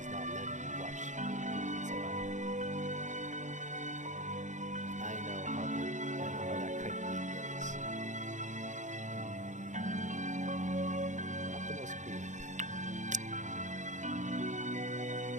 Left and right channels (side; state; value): left; late; 0.35 ms